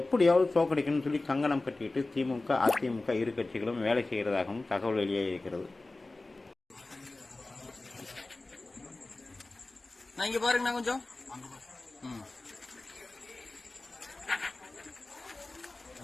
எப்படியாவது தோக்கடிக்கணும்னு சொல்லி கங்கணம் கட்டிட்டு திமுக அதிமுக இரு கட்சிகளும் வேலை செய்கிறதாகவும் தகவல் வெளியே இருக்கிறது. பாருங்க கொஞ்சம்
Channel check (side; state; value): right; quieter; 3.1 dB